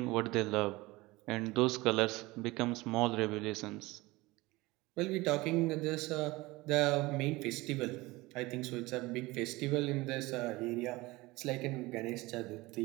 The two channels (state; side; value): quieter; left; 21.2 dB